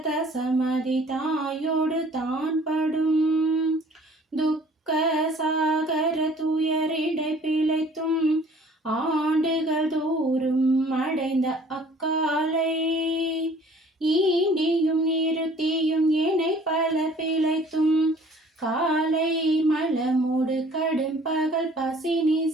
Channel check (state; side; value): normal; both; correlation 0.53